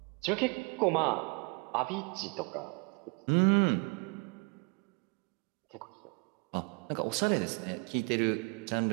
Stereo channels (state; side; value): quieter; left; 32.3 dB